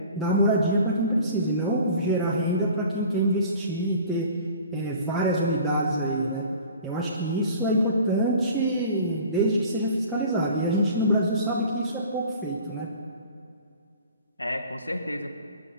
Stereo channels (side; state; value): both; inverted; correlation -0.45